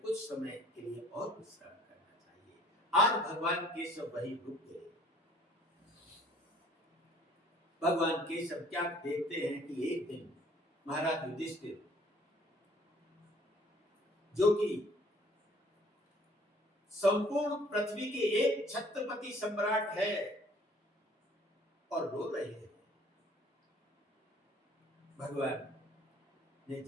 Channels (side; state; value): both; normal; correlation 0.56